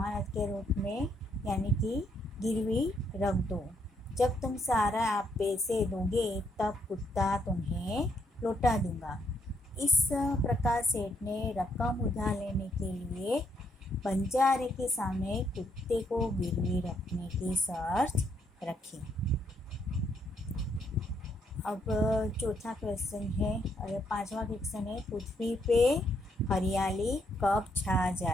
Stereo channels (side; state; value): both; normal; correlation 0.74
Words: के रूप में यानी कि गिरवी रख दो. जब तुम सारा आप पैसे दोगे तब कुत्ता तुम्हें लौटा दूंगा. इस प्रकार सेठ ने रकम उधार लेने के लिए बंजारे के सामने कुत्ते को गिरवी रखने की शर्त रखी. अब चौथा क्वेश्चन है और 5वां क्वेश्चन है, पृथ्वी पे हरियाली कब छा